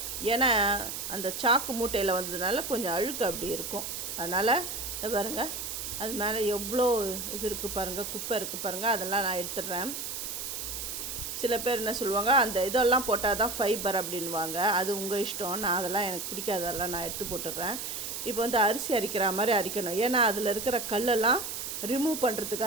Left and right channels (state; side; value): noise; right; hiss, 5 dB below the sound